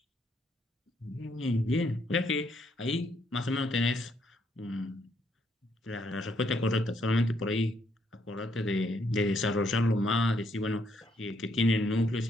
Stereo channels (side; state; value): both; normal; correlation 0.73